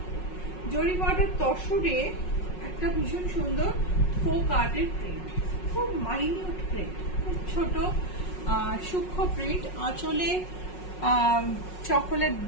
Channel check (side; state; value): right; late; 5.5 ms